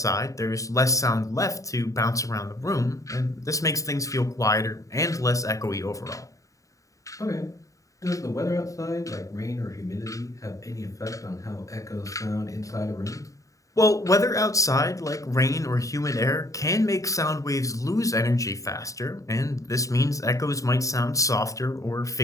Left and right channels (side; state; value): right; late; 0.16 ms